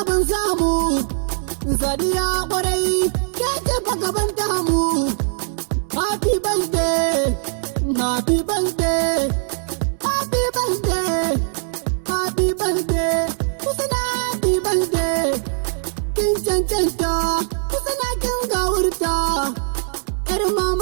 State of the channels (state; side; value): silent; left; 63 dB below the other